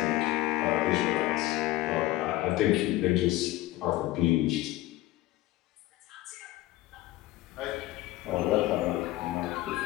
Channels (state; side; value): quieter; right; 17.0 dB